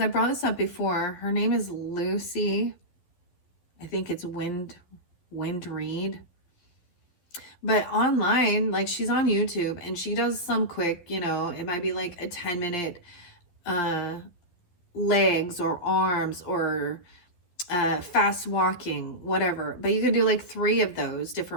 I brought this up before, her name is Lucy. I think it's Wind Reed. But online, like she's on YouTube and she does some quick, it might be like a 10-minute legs or arms or fast walking, whatever. But you can do like 3 of those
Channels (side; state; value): right; late; 11 ms